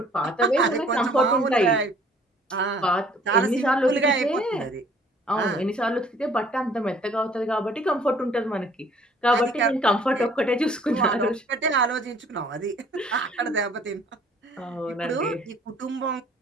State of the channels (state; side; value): normal; both; correlation 0.56